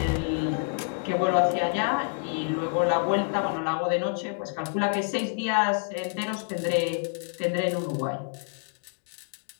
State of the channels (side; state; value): right; silent; 59 dB below the other